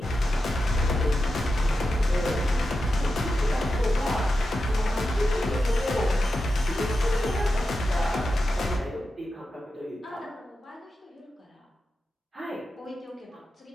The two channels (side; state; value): both; normal; correlation 0.90